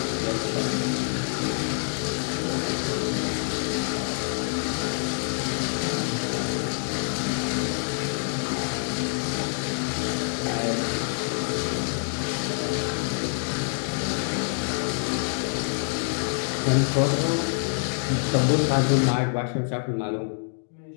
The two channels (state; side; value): silent; right; 57 dB below the other